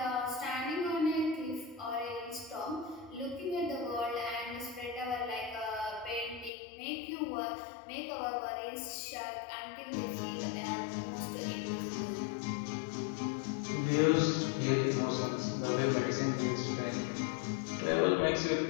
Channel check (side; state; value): right; drops out; at 6.5 s